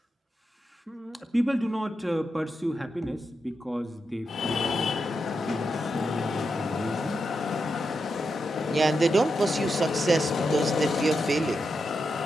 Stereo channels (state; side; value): normal; both; correlation 0.86